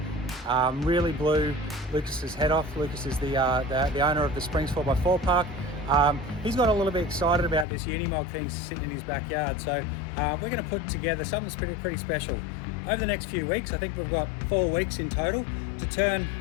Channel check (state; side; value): drops out; right; at 7.7 s